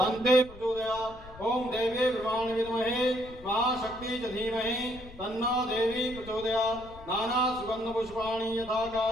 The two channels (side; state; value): left; noise; rumble, 18 dB below the sound